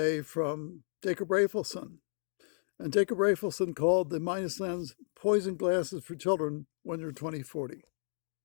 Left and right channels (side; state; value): right; silent; digital silence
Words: from Jacob Raphaelson. And Jacob Raphaelson called the minus lens poison glasses for children when you're 2040.